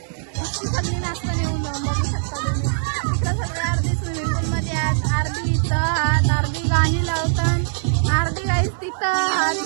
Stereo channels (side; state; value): left; silent; digital silence